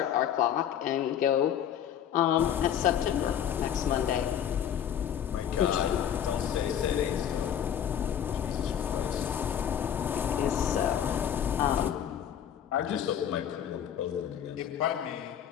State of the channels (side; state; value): right; quieter; 9.5 dB